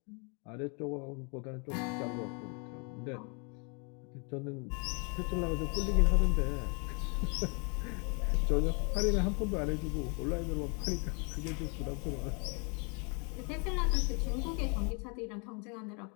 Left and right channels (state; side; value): quieter; right; 34.8 dB